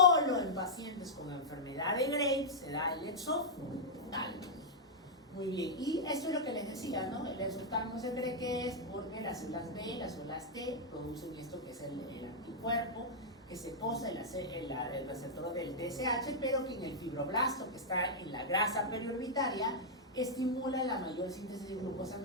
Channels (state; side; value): normal; both; correlation -0.07